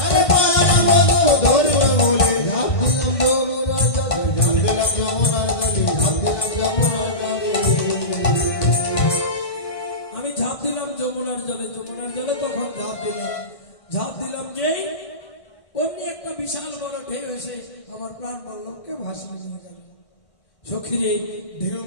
আমি ঝাঁপ দিলাম যমুনার জলে। যমুনার জলে তখন ঝাঁপ দিলাম যেই অমনি একটা বিশাল বড় ঢেউ এসে আমার প্রাণবল্লভকে ভাসিয়ে নিয়ে গেল। সখীরে, ঢেউ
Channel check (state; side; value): late; right; 1.6 ms